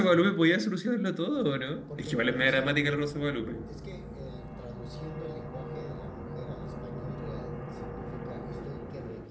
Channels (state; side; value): identical; both; correlation 1.00